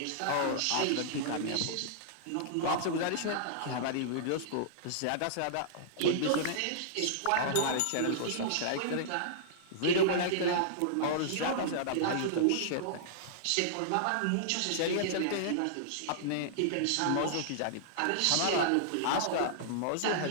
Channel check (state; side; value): different; both; correlation -0.02